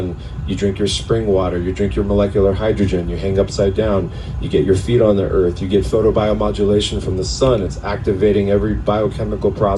you drink your spring water, you drink your molecular hydrogen, you hang upside down, you get your feet on the earth, you get photobiomodulation from the sun. It's activating every biochemical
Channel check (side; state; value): both; identical; correlation 1.00